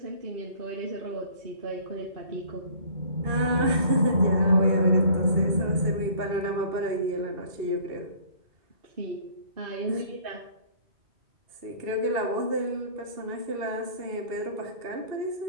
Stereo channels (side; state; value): left; late; 2.7 ms